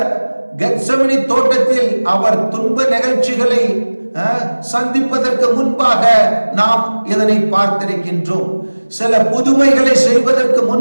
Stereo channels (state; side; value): inverted; both; correlation -1.00